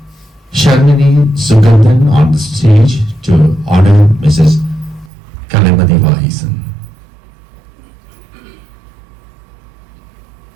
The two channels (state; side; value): drops out; left; at 5.1 s